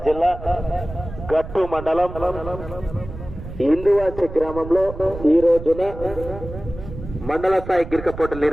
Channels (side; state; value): right; noise; rumble, 12 dB below the sound